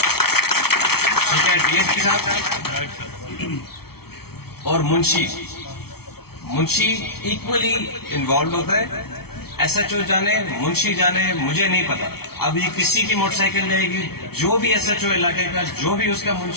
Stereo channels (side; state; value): right; late; 0.95 ms